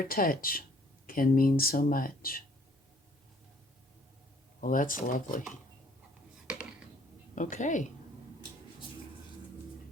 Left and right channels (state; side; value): normal; both; correlation 0.60